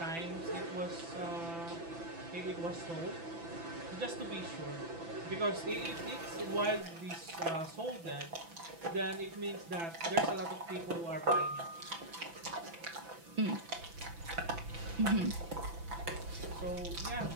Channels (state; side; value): late; left; 6.0 ms